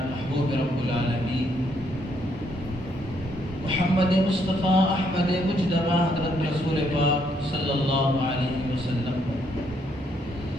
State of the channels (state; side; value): normal; both; correlation 0.72